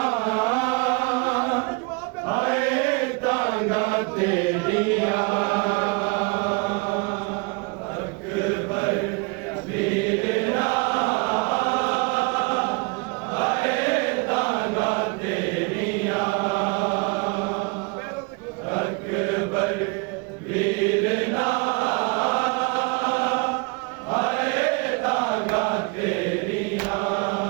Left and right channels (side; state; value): left; quieter; 30.2 dB